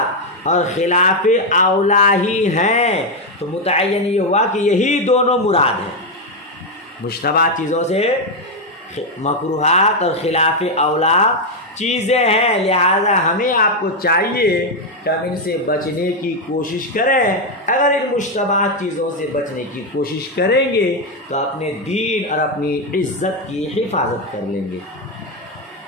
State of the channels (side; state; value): both; normal; correlation 0.04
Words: اور خلاف اولا ہی ہیں، تو متعین یہ ہوا کہ یہی دونوں مراد ہیں، مشتبہ چیزوں سے مکروہات اور خلاف اولا چیزیں ہیں، لہذا ہمیں آپ کو چاہیے کہ ہم ان سے بچنے کی کوشش کریں۔ اگر ان مشتبہ چیزوں سے بچنے کی کوشش کریں گے تو اپنے دین اور اپنی عزت کی حفاظت کر لیں گے،